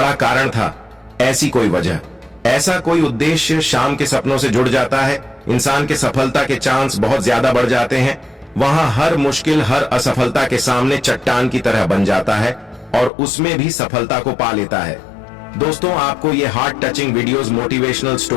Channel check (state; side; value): drops out; right; at 13.1 s